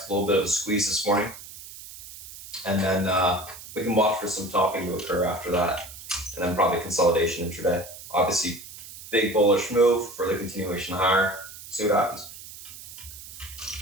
a little bit of a squeeze this morning. And then we can watch for some topping to occur after that. And then probably consolidation intraday. Obviously, big bullish move for the continuation higher. See what happens.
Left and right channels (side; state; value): right; noise; hiss, 15 dB below the sound